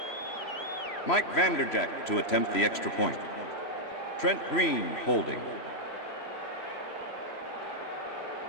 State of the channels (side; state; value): right; late; 3.0 ms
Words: Mike Vanderjagt to attempt the extra point. Trent Green holding.